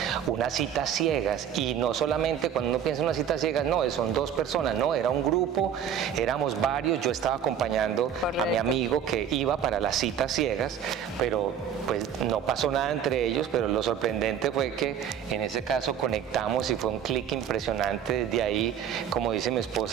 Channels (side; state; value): left; quieter; 8.7 dB